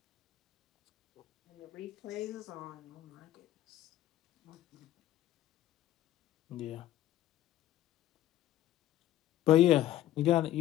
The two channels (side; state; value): right; quieter; 13.4 dB